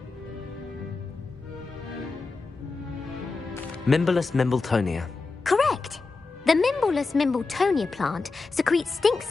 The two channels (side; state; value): right; quieter; 4.0 dB